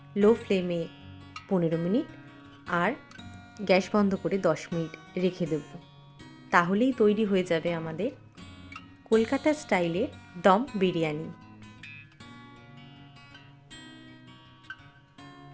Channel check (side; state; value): both; identical; correlation 1.00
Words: লো ফ্লেমে 15 মিনিট আর গ্যাস বন্ধ করে 10 মিনিট রেখে দেব। তাহলেই তৈরি হয়ে যাবে আমাদের কলকাতা স্টাইলের দম বিরিয়ানি।